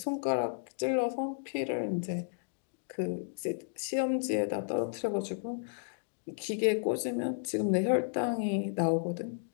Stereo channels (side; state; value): right; silent; digital silence